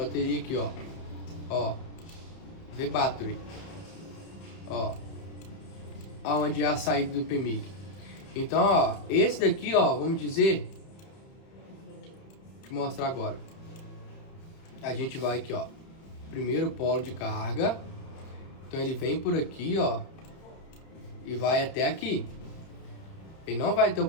aqui, ó. Ó. V-Battery. Ó. Aonde é a saída do PMIC. Então, ó, esse daqui, ó, vamos dizer. Deixa eu mostrar agora. A gente vai aqui, ó. Primeiro polo de carga. Então ele vem por aqui, ó. E vai até aqui. Ele não vai ter o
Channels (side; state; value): right; late; 31 ms